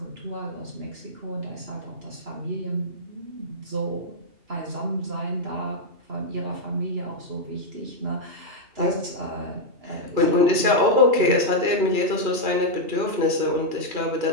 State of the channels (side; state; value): left; late; 2.8 ms